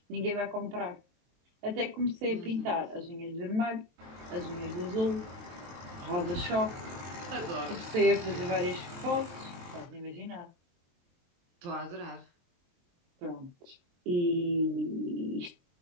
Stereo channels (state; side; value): late; left; 23 ms